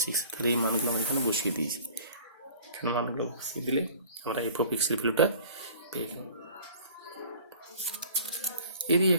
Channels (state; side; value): inverted; both; correlation -0.48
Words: 6। তাহলে এই মানগুলো আমরা এখানে বসিয়ে দিয়েছি। এখানে মানগুলো বসিয়ে দিলে আমরা এফ অফ এক্সের ভ্যালুটা পেয়ে গেলাম। এরই